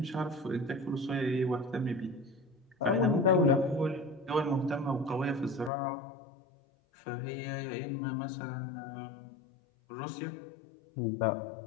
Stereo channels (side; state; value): right; drops out; at 5.7 s